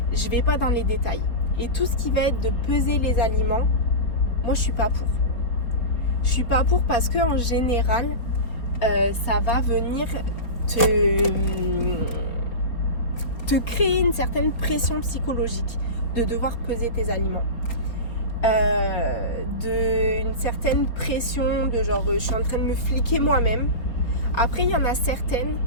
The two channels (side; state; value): right; late; 4.5 ms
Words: je vais pas dans les détails. Et tout ce qui va être de peser les aliments, moi, je suis pas pour. Je suis pas pour parce que en général, ça va venir te créer une certaine pression psychologique de devoir peser tes aliments. Une certaine pression de genre je suis en train de me fliquer moi-même. Après, il y en a certaines